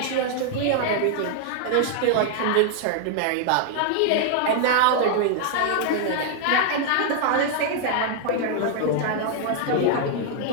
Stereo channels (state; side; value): different; both; correlation -0.01